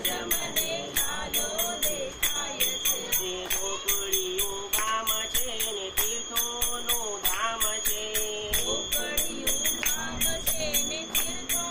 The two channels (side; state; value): both; identical; correlation 1.00